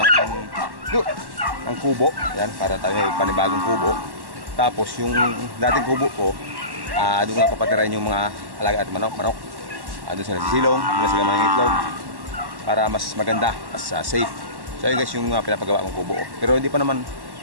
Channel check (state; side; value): late; left; 1.1 ms